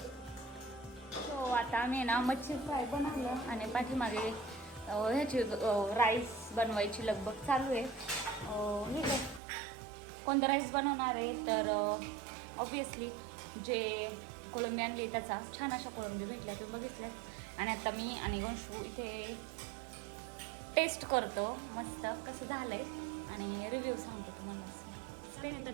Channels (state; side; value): drops out; left; at 9.4 s